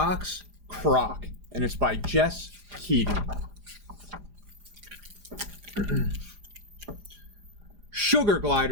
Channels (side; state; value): left; late; 4.9 ms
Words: Croc, and it's by Jess Keating. Sugar